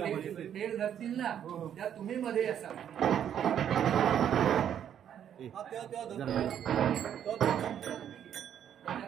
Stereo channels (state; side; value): quieter; left; 9.5 dB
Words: धरतील ना त्या तुम्ही मध्ये असाल.